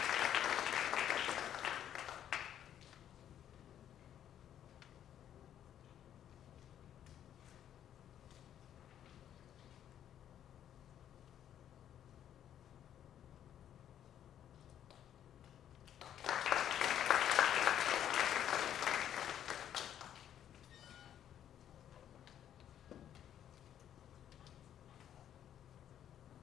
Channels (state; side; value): quieter; right; 10.3 dB